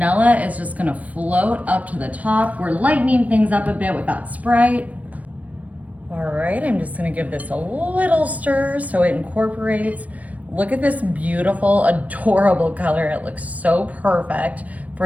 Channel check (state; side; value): late; left; 0.070 ms